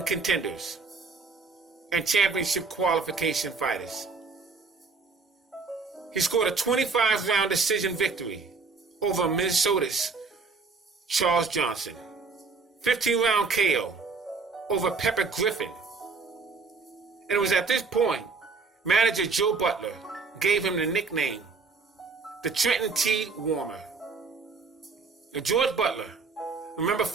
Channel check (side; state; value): left; quieter; 4.6 dB